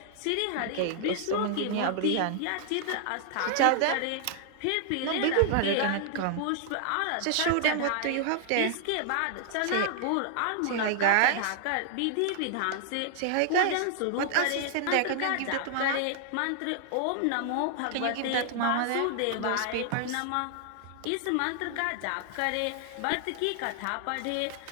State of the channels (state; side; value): different; both; correlation 0.00